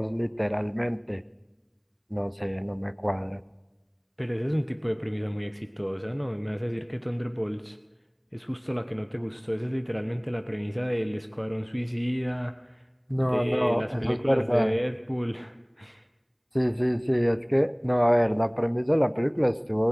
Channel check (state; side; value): identical; both; correlation 1.00